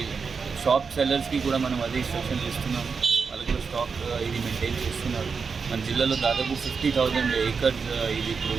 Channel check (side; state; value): left; quieter; 5.4 dB